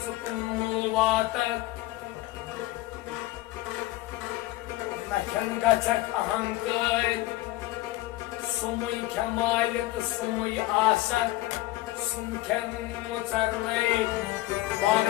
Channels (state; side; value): quieter; right; 17.5 dB